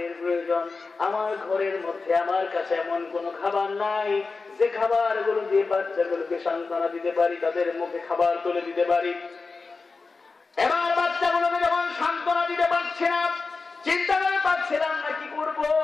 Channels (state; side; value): quieter; right; 4.2 dB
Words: প্রয়োজন। আমার ঘরের মধ্যে আমার কাছে এমন কোন খাবার নাই যে খাবারগুলো দিয়ে বাচ্চাগুলোকে সান্ত্বনা দিতে পারি, তাদের মুখে খাবার তুলে দিতে পারি। এবার বাচ্চাগুলোকে যখন সান্ত্বনা দিতে পারছি না, চিন্তা করে পাচ্ছিলাম না কি করব।